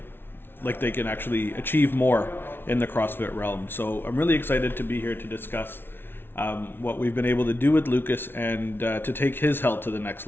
like they can actually achieve more in the CrossFit realm. So I'm really excited to be here to discuss what we've been able to do with Lucas and to take his health to the next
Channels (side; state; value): right; late; 0.11 ms